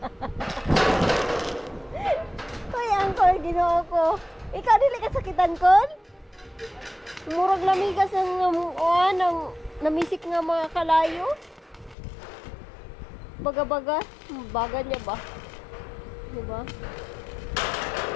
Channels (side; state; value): right; drops out; at 12.0 s